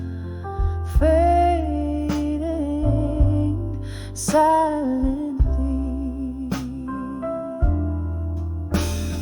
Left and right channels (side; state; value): both; identical; correlation 1.00